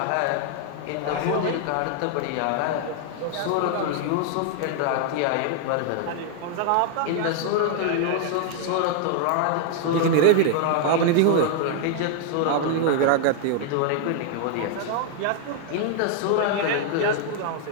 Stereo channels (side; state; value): both; different; correlation 0.00